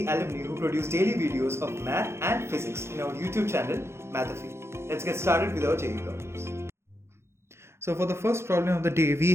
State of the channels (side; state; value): left; late; 0.13 ms